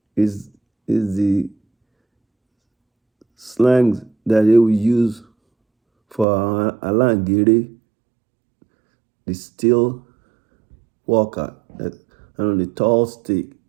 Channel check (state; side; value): drops out; left; at 6.2 s